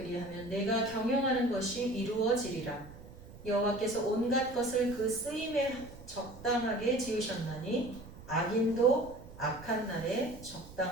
내가 경영하는 것이 이루어지리라. 여호와께서 온갖 것을 그 쓰임에 적당하게 지으셨나니 악인도 악한 날에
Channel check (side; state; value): right; noise; rumble, 17 dB below the sound